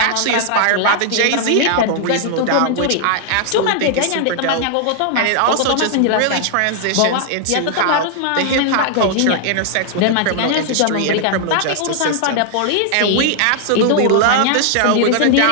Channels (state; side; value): different; both; correlation 0.00